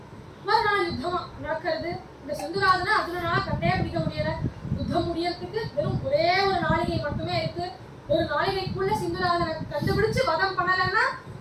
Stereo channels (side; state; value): both; identical; correlation 1.00